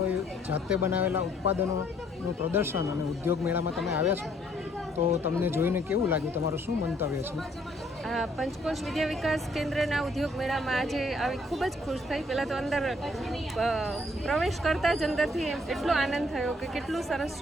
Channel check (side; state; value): both; normal; correlation 0.65